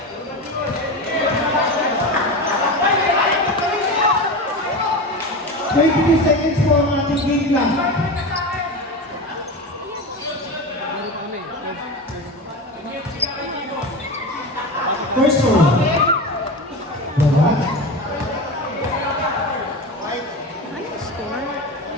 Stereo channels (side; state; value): both; normal; correlation 0.25